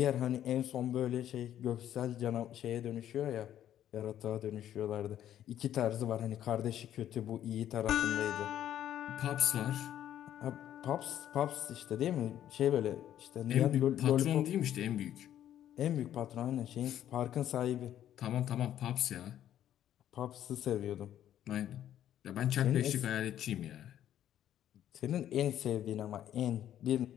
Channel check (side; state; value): right; quieter; 11.2 dB